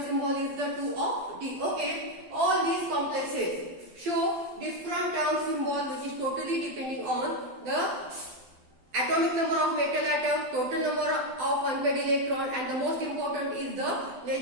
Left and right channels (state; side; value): late; left; 12 ms